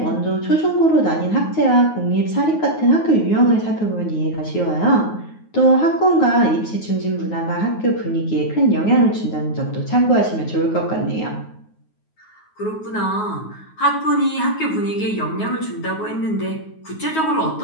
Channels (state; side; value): late; right; 9.4 ms